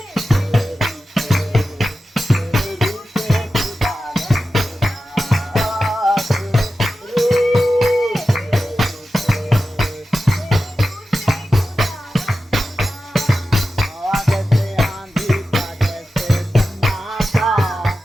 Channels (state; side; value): normal; both; correlation 0.92